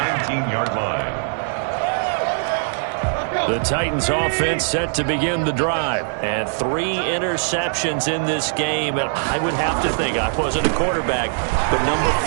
line. The Titans offense set to begin the drive. And 3 interceptions in this game. And I would have to think, I wasn't a quarterback, but number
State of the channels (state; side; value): silent; left; digital silence